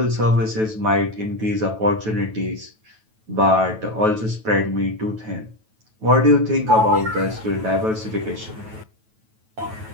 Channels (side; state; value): left; late; 9.2 ms